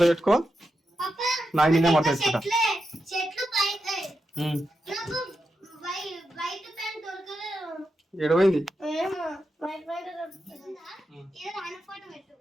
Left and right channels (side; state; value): both; normal; correlation 0.87